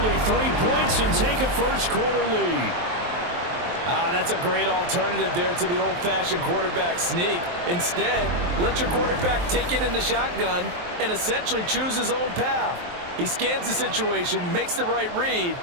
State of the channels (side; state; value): left; late; 23 ms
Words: 3 points and take a first-quarter lead. That's a great alternative there to the old-fashioned quarterback sneak. Instead, let your quarterback take it in the shotgun and essentially choose his own path. He scans the situation, makes the right read,